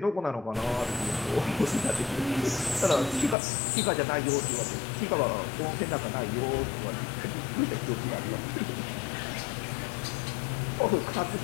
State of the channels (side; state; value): right; drops out; at 3.4 s